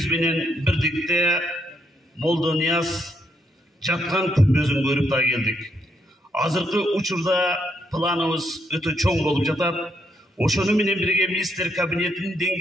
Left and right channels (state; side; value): normal; both; correlation 0.76